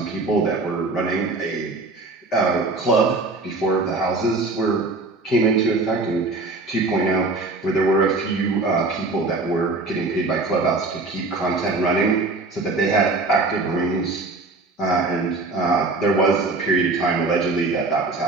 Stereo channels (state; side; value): quieter; left; 3.4 dB